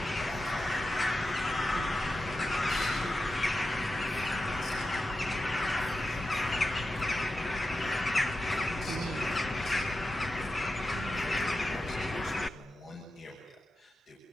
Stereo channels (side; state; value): both; normal; correlation 0.91